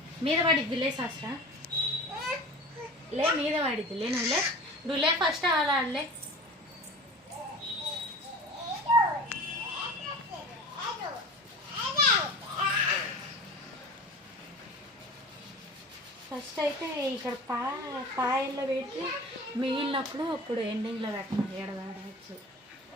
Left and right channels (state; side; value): normal; both; correlation 0.37